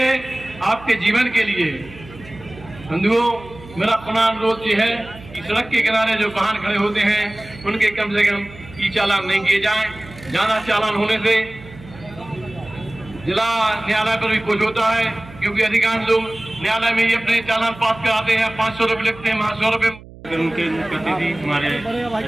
आपके जीवन के लिए। बंधुओं, मेरा पुनः अनुरोध ये है कि सड़क के किनारे जो वाहन खड़े होते हैं उनके कम से कम ई चालान नहीं किए जाएं। ज्यादा चालान होने से जिला न्यायालय पर भी कुछ होता है, क्योंकि अधिकांश लोग न्यायालय में ही अपने चालान पास कराते हैं, 500 रुपये लिखते हैं, 100 रुपये। उनके मुख्य अतिथि हमारे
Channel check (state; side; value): noise; right; hum, 19 dB below the sound